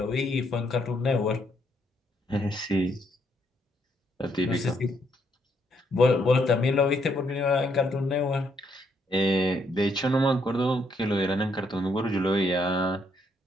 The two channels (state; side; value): normal; both; correlation 0.73